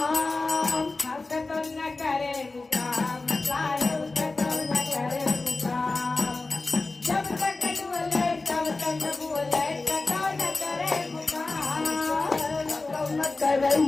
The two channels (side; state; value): right; quieter; 3.5 dB